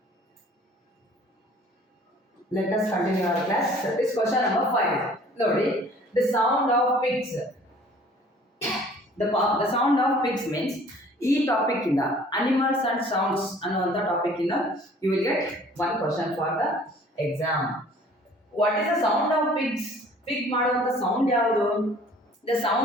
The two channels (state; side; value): normal; both; correlation 0.52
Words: Let us continue our class. This question number 5. Lodi, the sound of pigs. The sound of pigs means ಈ topic ಇಂದ animals and sounds ಅನ್ನುವಂಥ topic ಇಂದ you will get one question for the exam. What is the sound of pigs? Pig ಮಾಡುವಂಥ sound ಯಾವುದು? The